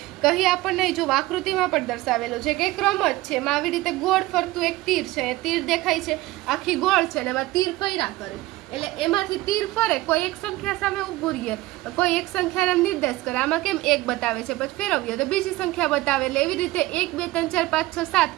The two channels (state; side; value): quieter; left; 18.4 dB